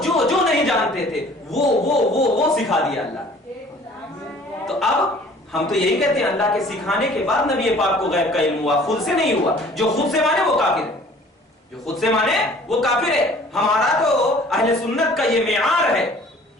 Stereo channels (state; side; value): normal; both; correlation 0.51